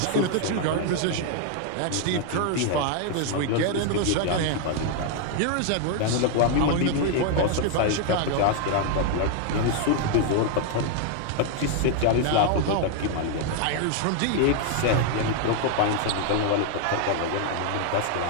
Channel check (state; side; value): different; both; correlation 0.00